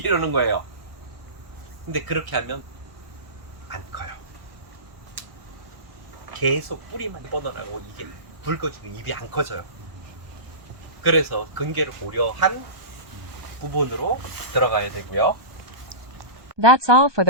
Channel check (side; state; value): left; late; 1.2 ms